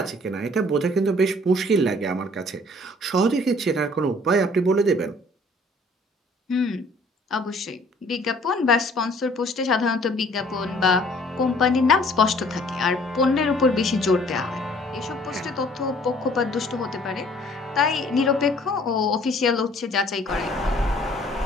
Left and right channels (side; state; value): both; normal; correlation 0.56